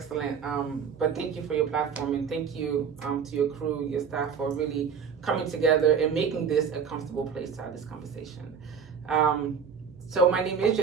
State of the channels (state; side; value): quieter; left; 6.6 dB